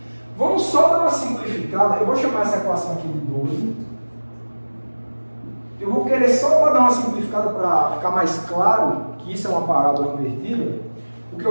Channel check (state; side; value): inverted; both; correlation -1.00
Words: Vamos só dar uma simplificada. Eu vou chamar essa equação aqui de 12. Eu vou querer só para dar uma simplificada para ficar mais claro que isso é uma parábola invertida. O que